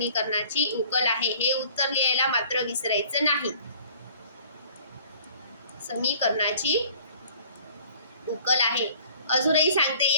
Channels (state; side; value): inverted; both; correlation -0.52